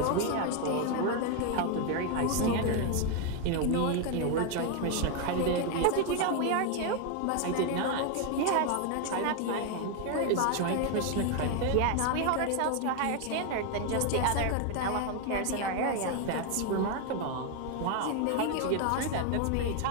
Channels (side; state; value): both; different; correlation 0.01